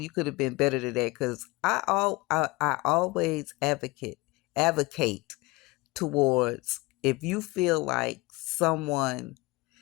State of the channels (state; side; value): quieter; right; 23.0 dB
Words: you could have been better than that. Because I always advocate towards, if you feel like someone